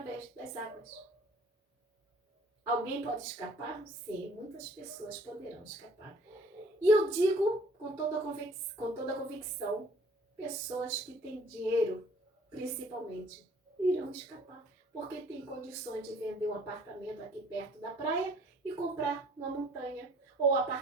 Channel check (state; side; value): normal; both; correlation 0.55